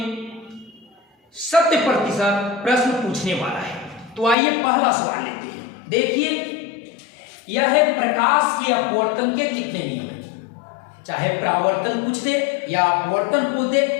100% प्रश्न पूछने वाला है। तो आइए पहला सवाल लेते हैं। देखिए, यह है प्रकाश के अपवर्तन के कितने नियम हैं। चाहे परावर्तन पूछ दे या अपवर्तन पूछ दे,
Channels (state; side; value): drops out; right; at 4.4 s